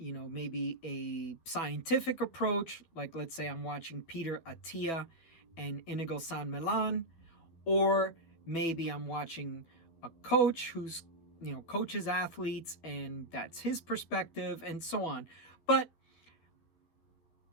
a scientific approach. Like, let's say I'm watching Peter Attia and Inigo San Milan, or maybe I'm watching a coach who's, coaches athletes and that's his perspective and so on. But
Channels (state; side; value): late; right; 12 ms